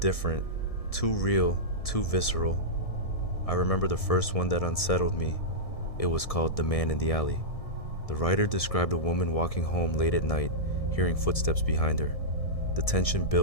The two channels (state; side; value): late; right; 1.6 ms